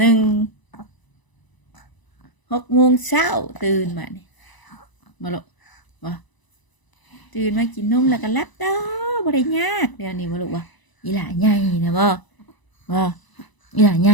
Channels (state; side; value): late; right; 1.0 ms